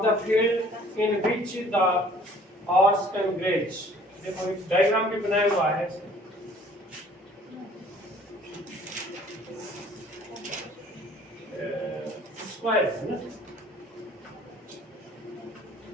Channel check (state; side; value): normal; both; correlation 0.54